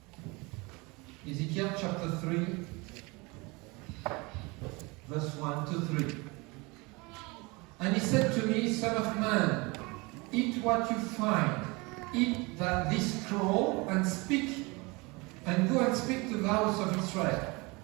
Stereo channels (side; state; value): left; quieter; 26.1 dB